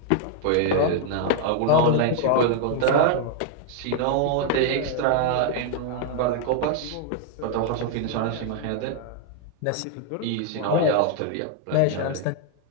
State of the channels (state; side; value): different; both; correlation 0.00